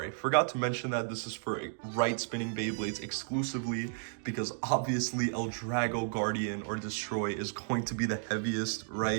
forgot to mention that this is for right spinning Beyblades exclusively, because obviously El Drago, Guardian, or Destroy is going to be the heaviest,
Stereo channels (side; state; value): left; silent; digital silence